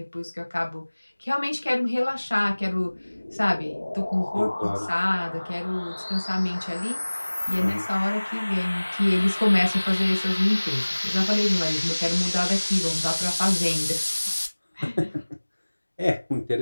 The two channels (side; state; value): both; inverted; correlation -1.00